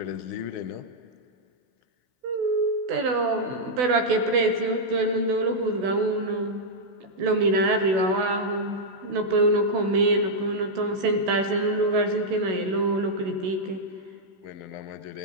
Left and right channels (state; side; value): late; left; 16 ms